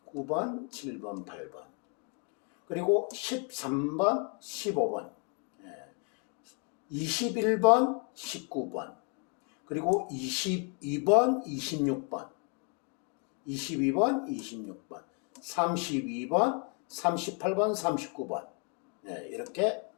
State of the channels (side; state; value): right; quieter; 38.3 dB